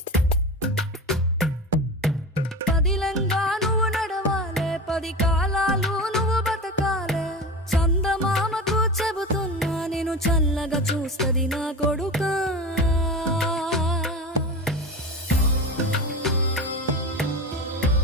పదిలంగా నువ్వు నడవాలే, 10 కాలాలు నువ్వు బతకాలే. చందమామకు చెబుతున్నా నేను చల్లగా చూస్తది నా కొడుకా.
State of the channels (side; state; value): both; normal; correlation 0.27